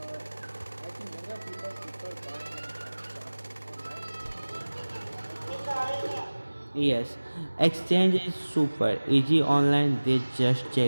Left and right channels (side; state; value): both; inverted; correlation -1.00